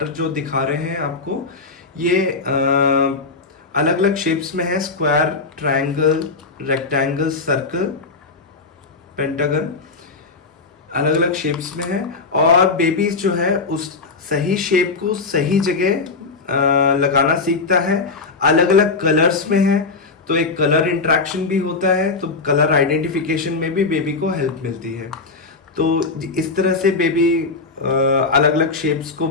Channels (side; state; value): right; quieter; 4.1 dB